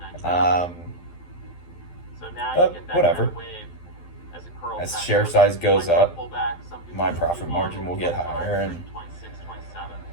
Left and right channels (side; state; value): right; late; 12 ms